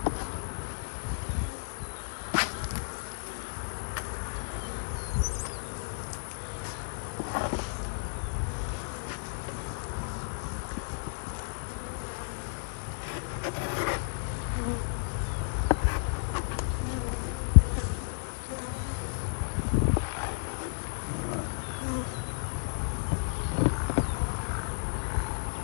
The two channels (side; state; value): right; silent; digital silence